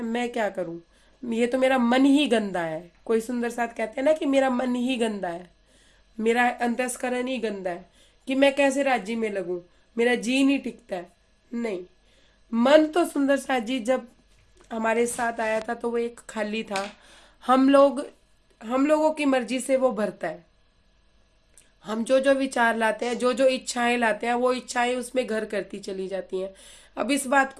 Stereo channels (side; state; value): both; identical; correlation 1.00